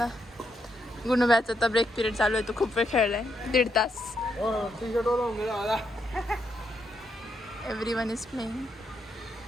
गुणव्याचा आता ब्रेक पिरियड चालू आहे. तो खूप वेळ खेळलाय 1.5 तास. Everyone is playing.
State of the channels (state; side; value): normal; both; correlation 0.79